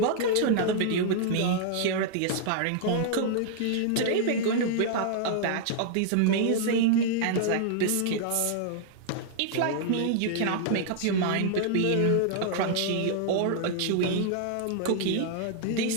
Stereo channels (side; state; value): both; different; correlation -0.01